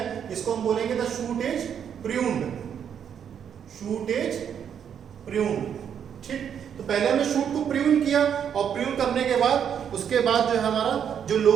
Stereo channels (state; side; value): quieter; left; 8.3 dB